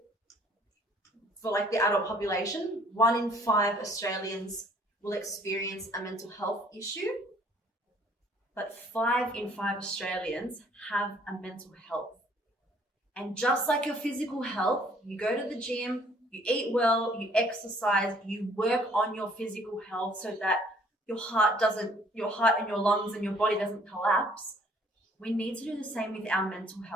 for like the adult population, 1 in 5 Australians will experience a mental health issue, but 5 in 5 Australians have a mental health. And just like your physical health, you go to the gym, you eat well, you exercise, you work on your physical health so that your heart and your lungs and your body doesn't collapse. We need to do the same with our mental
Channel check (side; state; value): both; normal; correlation 0.60